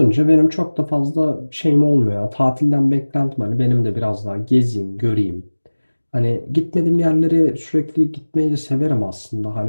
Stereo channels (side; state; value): both; inverted; correlation -1.00